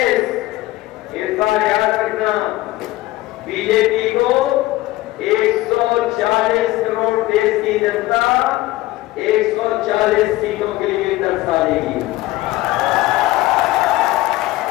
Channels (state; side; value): quieter; right; 17.9 dB